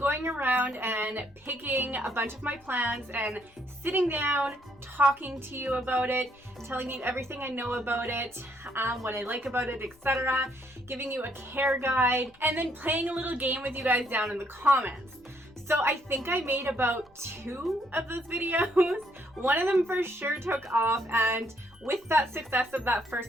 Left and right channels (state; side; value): noise; left; rumble, 30 dB below the sound